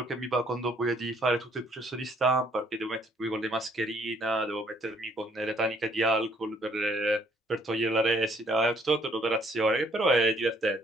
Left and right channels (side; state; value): both; normal; correlation 0.64